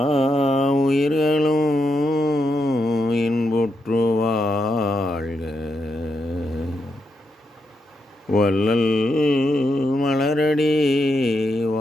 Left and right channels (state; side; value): normal; both; correlation 0.83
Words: உயிர்களும் இன்புற்று வாழ்க, வள்ளல் மலரடி